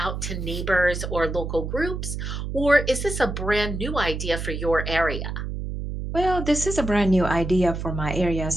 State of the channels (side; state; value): right; noise; hum, 5 dB below the sound